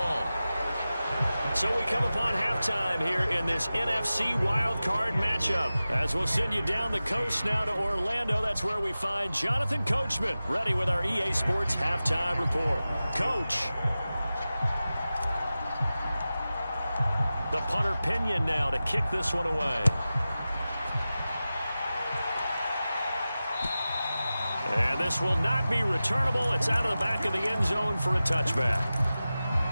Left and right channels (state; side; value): inverted; both; correlation -0.95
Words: So we come upon halftime here in this NFC wildcard matchup. As we'll send you down the coast now to Orlando. That's where we find Jonathan Coachman ready with our EA Sports halftime report. Coach. The punter Pinion now to kick this one away. And this will not be returnable. It's out of the back of the end zone for a touchback.